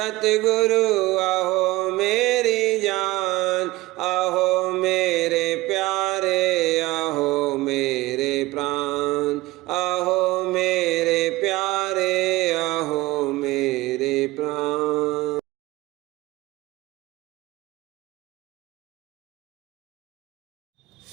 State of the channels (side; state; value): left; quieter; 19.6 dB